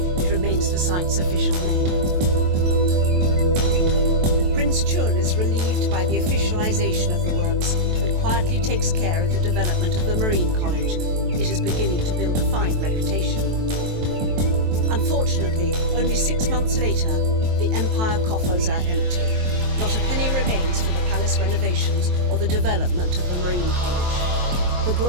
it remains the site's official name. Prince Chun is relieved by the officialization of the works and quietly takes care of the development of the Marine College. It is beginning to build a fine reputation. Unfortunately, only 6 months later, the empire coffers are empty. Not a penny remains for the palace renovations or the development of the Marine College. The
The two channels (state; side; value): late; left; 23 ms